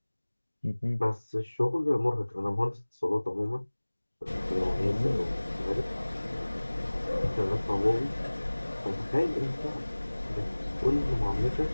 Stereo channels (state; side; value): inverted; both; correlation -1.00